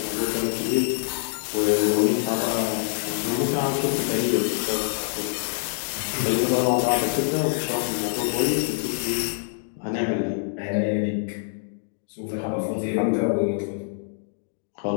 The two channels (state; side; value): silent; right; digital silence